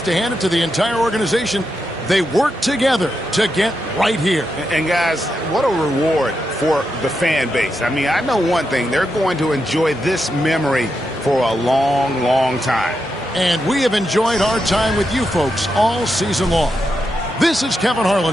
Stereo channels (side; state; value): both; normal; correlation 0.85